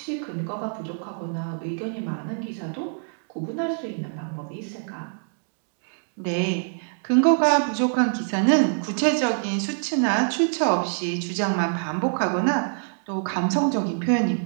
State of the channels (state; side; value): silent; left; digital silence